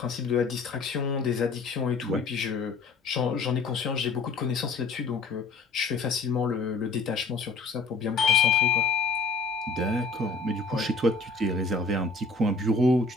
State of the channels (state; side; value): quieter; right; 3.7 dB